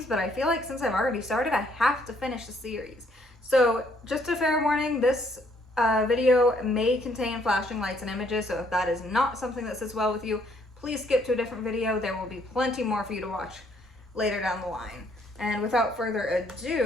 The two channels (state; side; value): normal; both; correlation 0.67